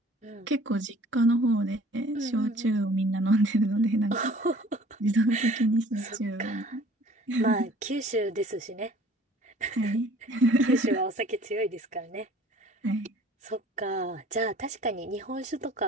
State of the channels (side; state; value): both; normal; correlation 0.52